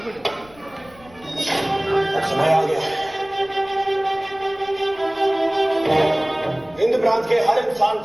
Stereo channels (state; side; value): noise; left; rumble, 25 dB below the sound